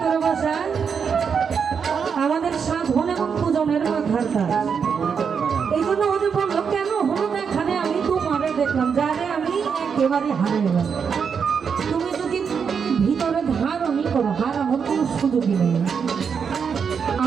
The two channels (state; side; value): quieter; left; 6.5 dB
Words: বসায় আমাদের সাধন এবং পূজনের মাথার কাজ। এই জন্য ওদের বললো, কেন হলো এখানে আমি তোমারে দেখলাম, যারে আমি একেবারে হারিয়ে গেলাম। তুমি যদি ভিতরে ধারণই করো, হারানোর কোনো সুযোগই নেই।